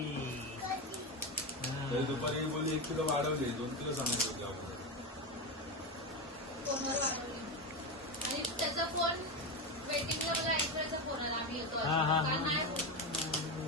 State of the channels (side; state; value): both; normal; correlation 0.16